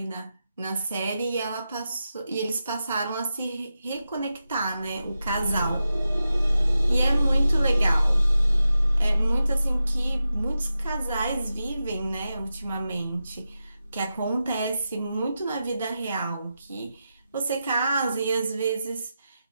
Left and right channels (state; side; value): inverted; both; correlation -0.90